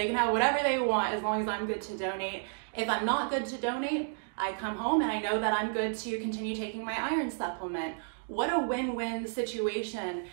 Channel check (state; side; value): silent; left; digital silence